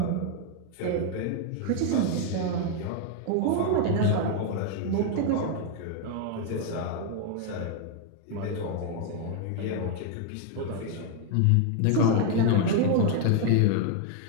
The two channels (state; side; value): different; both; correlation 0.00